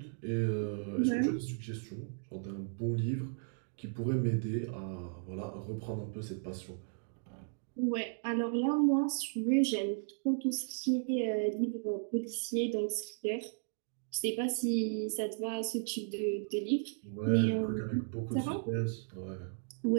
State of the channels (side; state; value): left; silent; digital silence